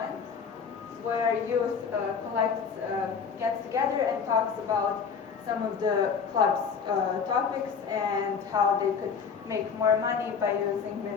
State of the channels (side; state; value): right; quieter; 6.1 dB